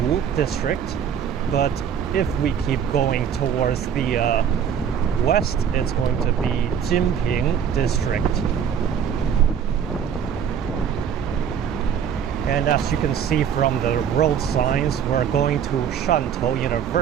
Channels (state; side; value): quieter; left; 8.1 dB